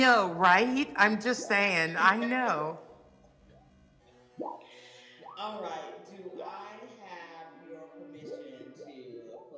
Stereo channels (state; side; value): identical; both; correlation 1.00